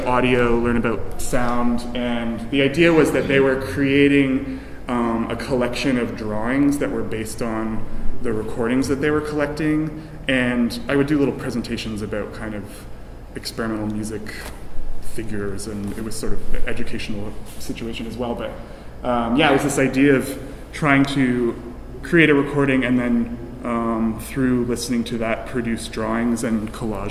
audio, learn about sound. And the idea was that they were creating a collection of drawings that were based on the recordings that they were collecting. And I would do little presentations about kind of experimental music figures, and it was sort of an educational situation as well. But it was this idea of trying to create a recording and then through listening to that produce drawings and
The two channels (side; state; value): both; identical; correlation 1.00